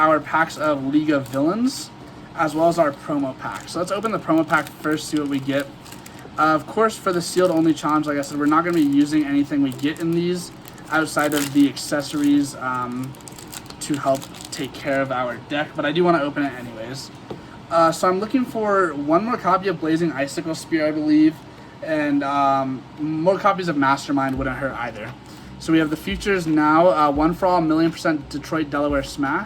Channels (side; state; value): both; identical; correlation 1.00